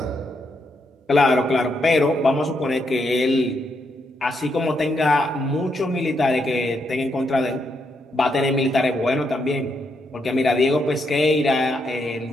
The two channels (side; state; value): both; normal; correlation 0.79